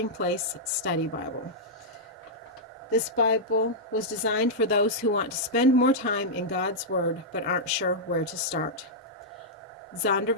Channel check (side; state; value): both; normal; correlation -0.08